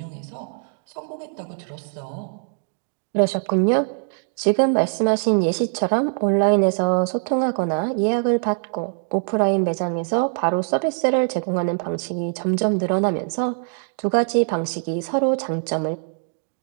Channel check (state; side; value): silent; left; 64 dB below the other